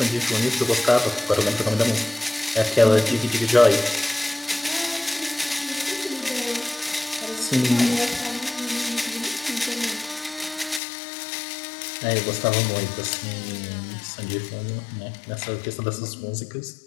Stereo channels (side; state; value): right; drops out; at 10.8 s